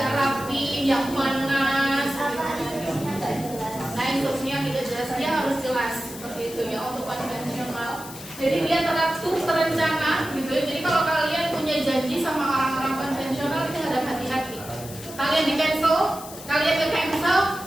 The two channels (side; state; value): left; noise; hiss, 14 dB below the sound